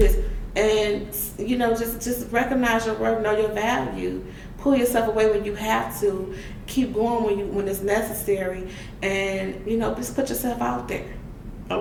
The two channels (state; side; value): identical; both; correlation 1.00